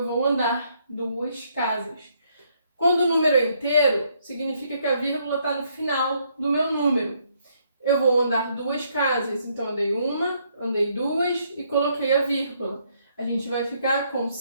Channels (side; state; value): both; inverted; correlation -0.72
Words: vou andar duas casas. Quando o número é inteiro, significa que a vírgula está no final do meu número. Eu vou andar duas casas, então andei uma, andei duas e coloquei a vírgula. A gente vai ficar com